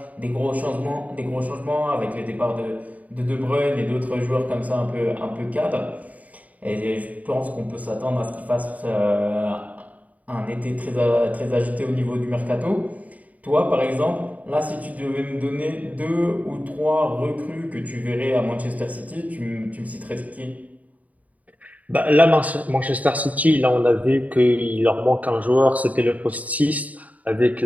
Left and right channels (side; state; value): left; late; 0.072 ms